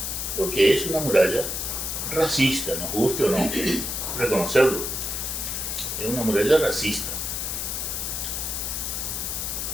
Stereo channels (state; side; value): noise; left; hiss, 3 dB below the sound